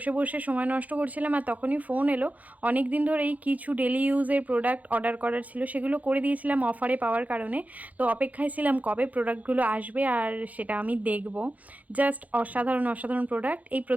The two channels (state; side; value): late; left; 0.076 ms